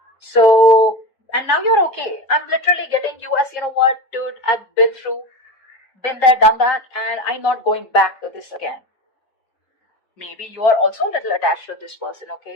So, and now you're okay. I'm literally getting you as, you know what, dude, I've been there, done that, and I'm not going back to this again. Maybe you are also a little attached to this person,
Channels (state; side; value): late; right; 3.9 ms